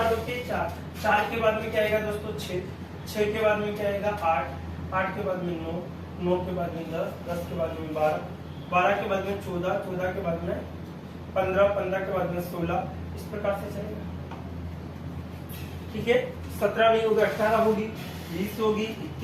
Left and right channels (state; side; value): identical; both; correlation 1.00